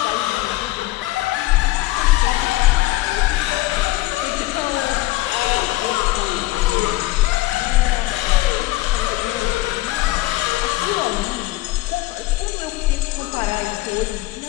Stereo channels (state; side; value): quieter; right; 18.2 dB